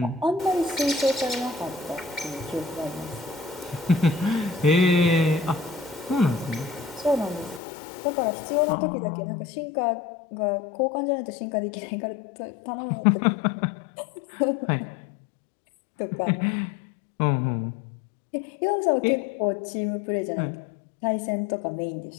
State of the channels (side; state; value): right; drops out; at 7.6 s